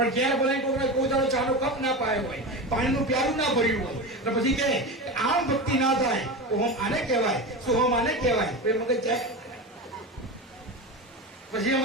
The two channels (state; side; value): normal; both; correlation 0.24